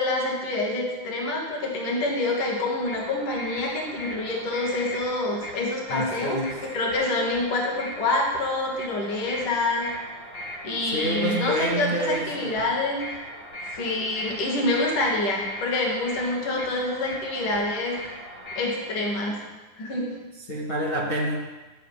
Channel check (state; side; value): late; right; 9.7 ms